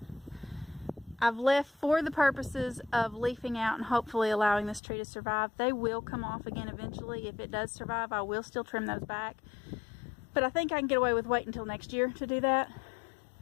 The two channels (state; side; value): drops out; right; at 4.8 s